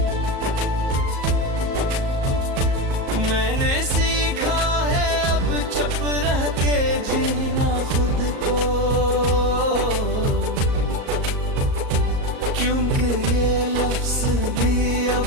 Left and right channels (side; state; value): left; late; 38 ms